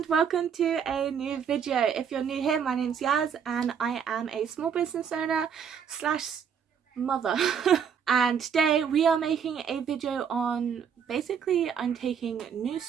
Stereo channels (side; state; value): left; quieter; 7.3 dB